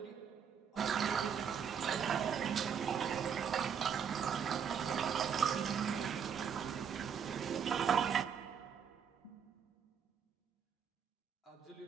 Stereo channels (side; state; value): left; quieter; 7.4 dB